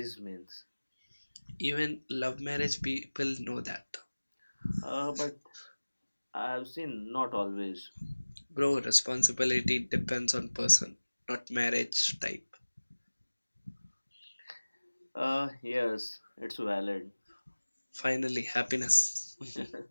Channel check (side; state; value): both; inverted; correlation -1.00